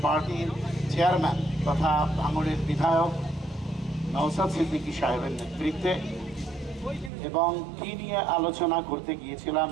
পার্টির চেয়ারম্যান তথা ভাঙড়ের বিধায়ক নওশাদ সিদ্দিকী সাহেবের নেতৃত্বে, এবং কি নিয়ে আলোচনা করতে গিয়েছিলাম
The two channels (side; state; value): left; drops out; at 7.1 s